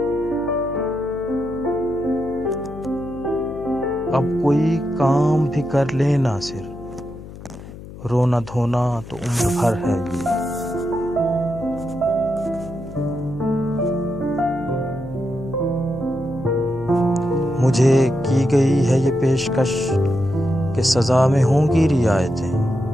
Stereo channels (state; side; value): noise; left; hum, 14 dB below the sound